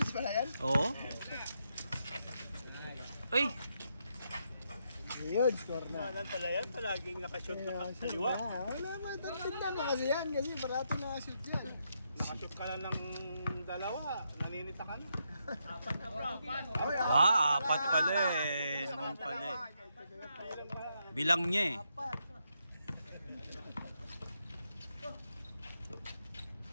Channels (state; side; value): inverted; both; correlation -0.80